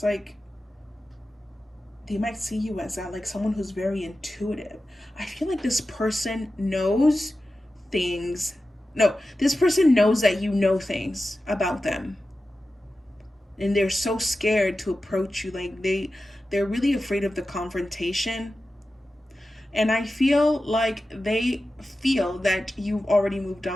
like they might see you as that, like someone who's very intuitive. I feel like this person knows things. No, this person knows that you know things about them. And they're so scared to approach you. Like they're really afraid of the confrontation. And I feel like they feel that you've already moved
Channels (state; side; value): normal; both; correlation 0.93